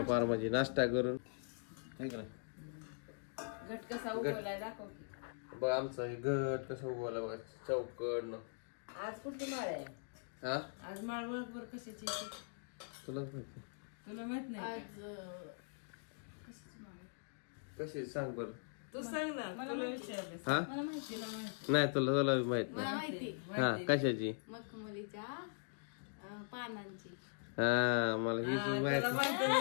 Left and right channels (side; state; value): right; silent; digital silence